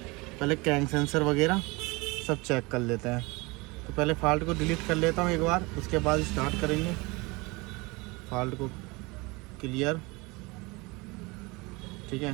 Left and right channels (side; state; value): left; quieter; 25.2 dB